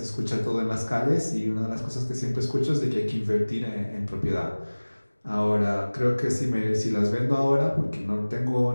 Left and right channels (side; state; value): both; inverted; correlation -1.00